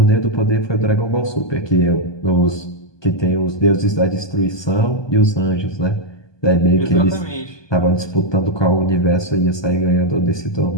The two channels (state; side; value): late; right; 1.2 ms